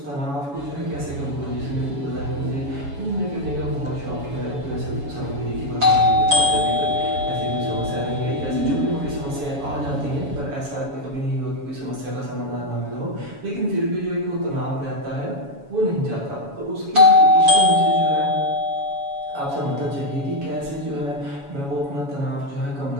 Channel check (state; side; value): late; left; 7.1 ms